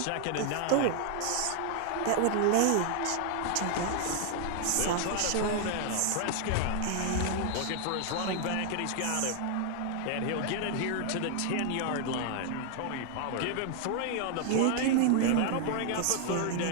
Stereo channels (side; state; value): both; different; correlation 0.00